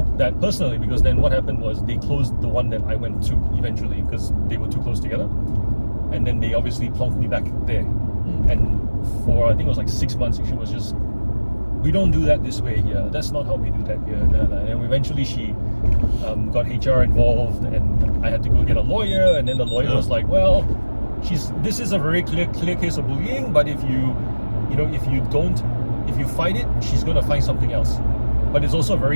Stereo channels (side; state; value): both; inverted; correlation -1.00